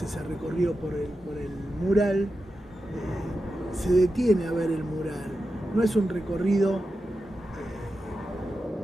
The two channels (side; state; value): both; normal; correlation 0.90